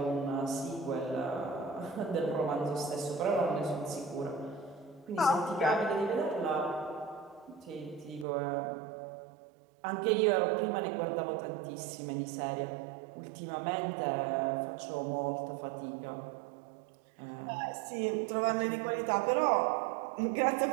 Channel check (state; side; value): drops out; left; at 8.2 s